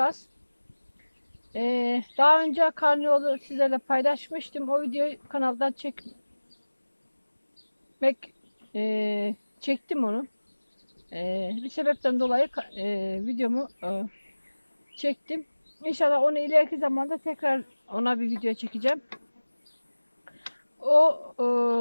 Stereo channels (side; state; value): both; inverted; correlation -1.00